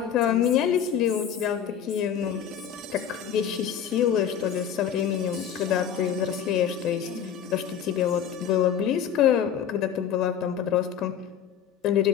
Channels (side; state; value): right; quieter; 8.7 dB